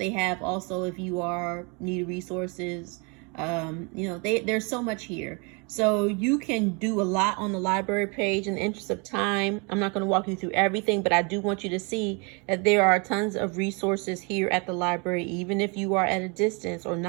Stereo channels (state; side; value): quieter; left; 32.0 dB